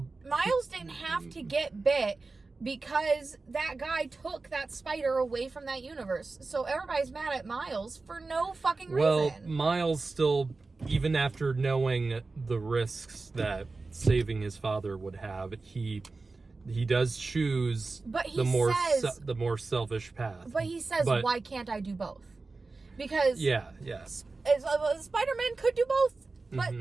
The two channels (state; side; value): quieter; left; 3.7 dB